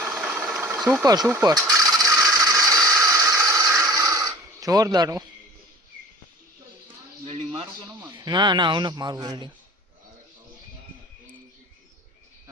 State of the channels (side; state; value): both; normal; correlation 0.44